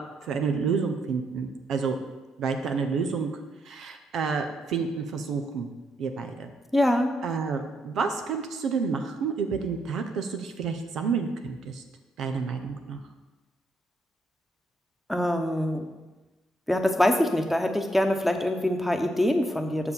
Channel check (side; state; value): both; normal; correlation 0.77